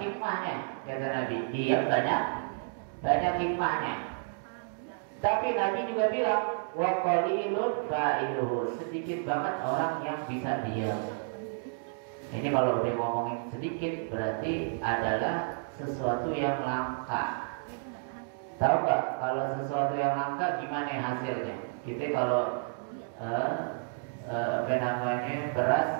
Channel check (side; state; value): left; silent; digital silence